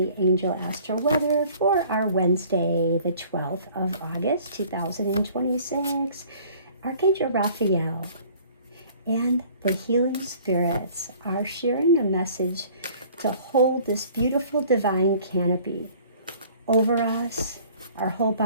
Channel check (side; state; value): both; inverted; correlation -0.53